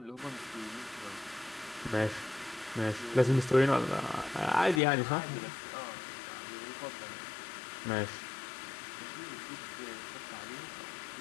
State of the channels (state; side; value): drops out; right; at 4.8 s